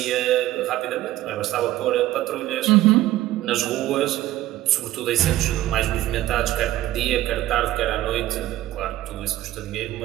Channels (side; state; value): left; quieter; 15.0 dB